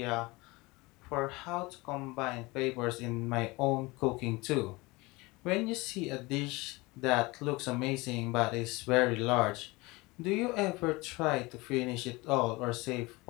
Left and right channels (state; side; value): quieter; right; 23.3 dB